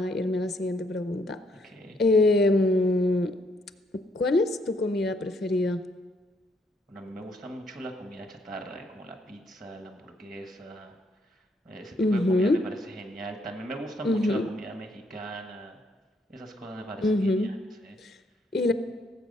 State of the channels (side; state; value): both; normal; correlation 0.71